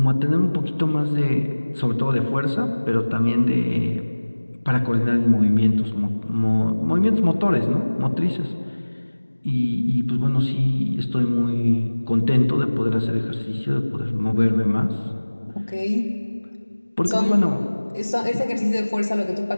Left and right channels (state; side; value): inverted; both; correlation -1.00